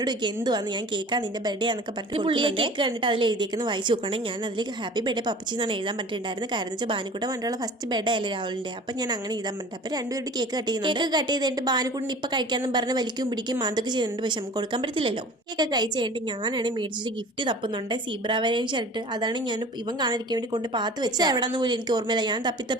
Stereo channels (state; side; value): normal; both; correlation 0.43